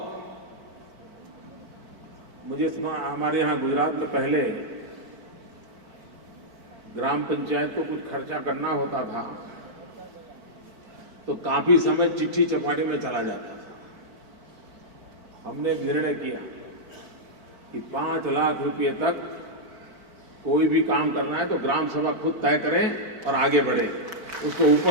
मुझे हमारे यहां गुजरात में पहले ग्राम पंचायत को कुछ खर्चा करना होता था तो काफी समय चिट्ठी चपाटी में चला जाता था। हमने निर्णय किया कि 5 लाख रुपए तक कोई भी काम करना है तो ग्राम सभा खुद तय करें और आगे बढ़े। उसको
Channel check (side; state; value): left; late; 4.5 ms